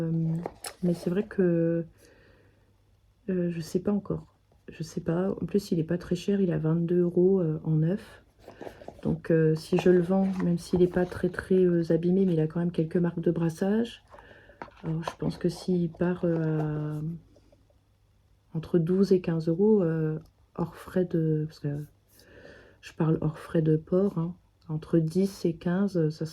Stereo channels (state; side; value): identical; both; correlation 1.00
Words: c'est vrai que je sais pas encore. Je sais pas. En plus, il est pas très cher, il a 22 € en neuf. Donc, si je le vends, même s'il n'est pas très très abîmé, mais il a quand même quelques marques de brassage. Alors, je pense que s'il part entre 12 et 15 € hors frais de... Parce que je parle hors frais de port, hein, entre 10 et 15, ça